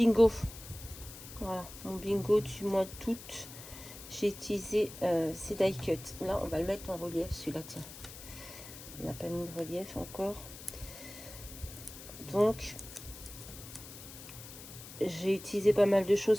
Voilà, mon bingo du mois d'août. J'ai utilisé ces die cut. Là, on va le mettre en relief, celui-là, tiens. On n'a pas mis de relief encore. Donc, j'ai utilisé pas mal de choses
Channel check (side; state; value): left; noise; hiss, 14 dB below the sound